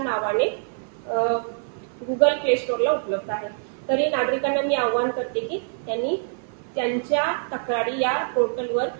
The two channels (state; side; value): silent; left; 55 dB below the other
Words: नावाने गुगल प्ले स्टोअरला उपलब्ध आहे। तरी नागरिकांना मी आवाहन करते की त्यांनी त्यांच्या तक्रारी या पोर्टलवर